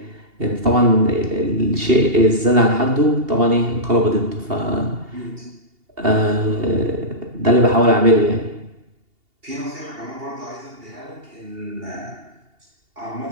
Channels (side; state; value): left; late; 2.8 ms